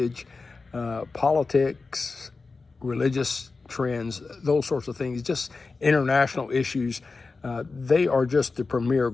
politics, religious trends, those sorts of things, just international issues. They are just the premier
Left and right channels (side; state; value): right; quieter; 4.1 dB